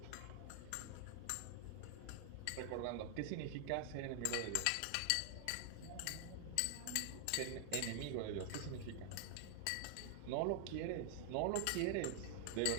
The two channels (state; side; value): different; both; correlation 0.00